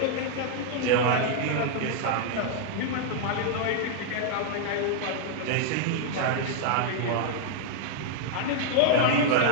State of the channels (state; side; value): different; both; correlation -0.01